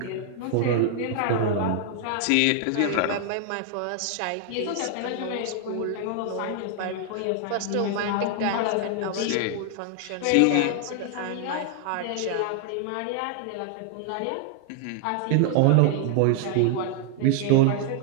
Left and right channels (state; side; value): different; both; correlation 0.00